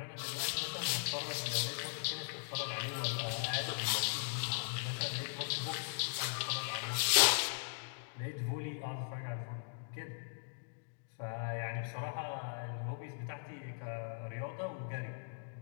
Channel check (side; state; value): right; silent; digital silence